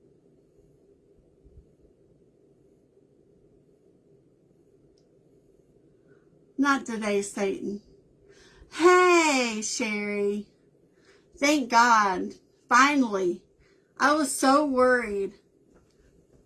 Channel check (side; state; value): both; identical; correlation 1.00